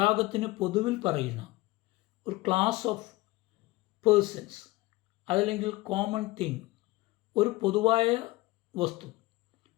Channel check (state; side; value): quieter; right; 20.1 dB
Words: പൊതുവിൽ പറയുന്ന ഒരു ക്ലാസ് ഓഫ് പേഴ്സൺസ്, അതല്ലെങ്കിൽ കോമൺ തിങ്, ഒരു പൊതുവായ വസ്തു,